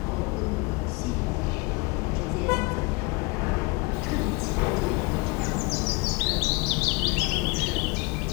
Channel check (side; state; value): right; quieter; 27.4 dB